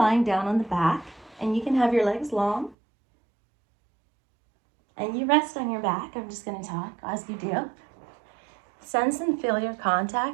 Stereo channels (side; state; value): left; drops out; at 2.8 s